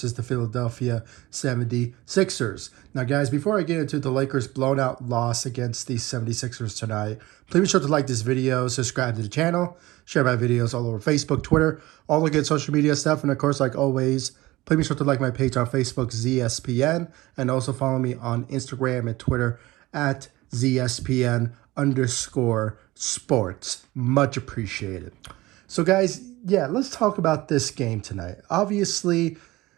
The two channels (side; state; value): left; quieter; 19.1 dB